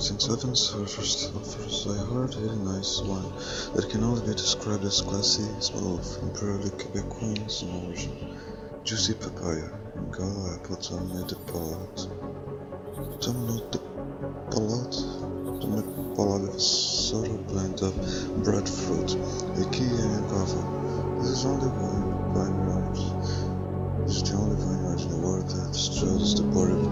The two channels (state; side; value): identical; both; correlation 1.00